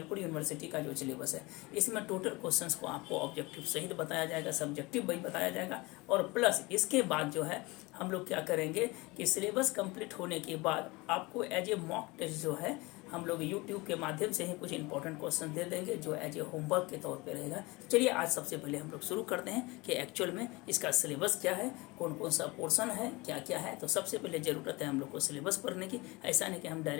यूनिवर्सिटी का जो सिलेबस है इसमें टोटल क्वेश्चंस को आपको ऑब्जेक्टिव सहित बताया जाएगा, सब्जेक्टिव भी बताया जाएगा। और प्लस इसके बाद जो है हम लोग क्या करेंगे कि सिलेबस कंप्लीट होने के बाद आपको एज ए मॉक टेस्ट जो है हम लोग YouTube के माध्यम से ही कुछ इंपॉर्टेंट क्वेश्चन दे देंगे जो एज ए होमवर्क के तौर पे रहेगा। चलिए आज सबसे पहले हम लोग शुरू करते हैं कि एक्चुअल में इसका सिलेबस क्या है, कौन कौन सा पोर्शन है, क्या क्या है। तो सबसे पहले ज़रूरत है हम लोग को सिलेबस पढ़ने की। ऐसा नहीं कि हम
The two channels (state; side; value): quieter; right; 23.6 dB